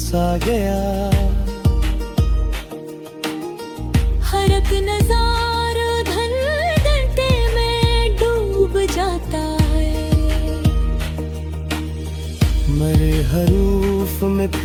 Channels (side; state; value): both; identical; correlation 1.00